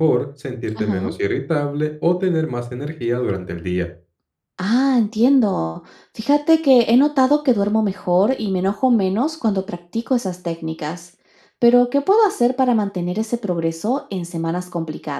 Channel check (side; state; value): both; identical; correlation 1.00